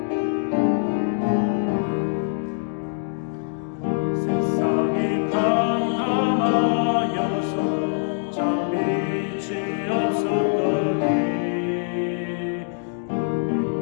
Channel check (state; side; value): silent; right; digital silence